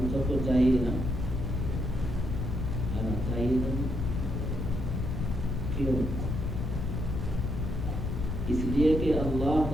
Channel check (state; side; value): noise; left; rumble, 2 dB below the sound